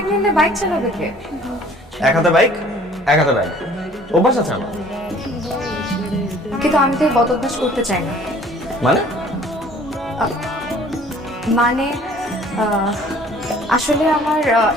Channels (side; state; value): both; normal; correlation 0.53